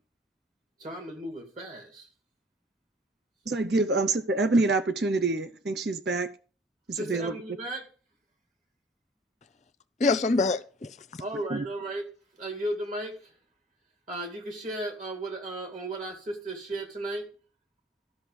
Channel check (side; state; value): both; normal; correlation 0.51